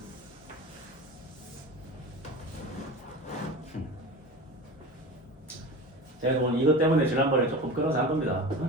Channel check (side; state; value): both; normal; correlation 0.32